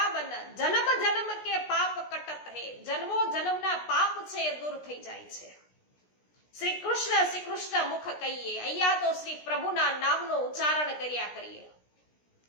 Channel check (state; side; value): late; right; 17 ms